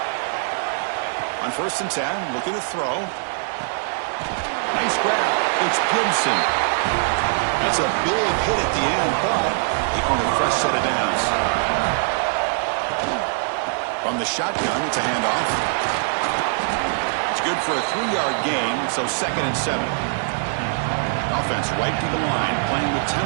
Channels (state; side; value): silent; left; 64 dB below the other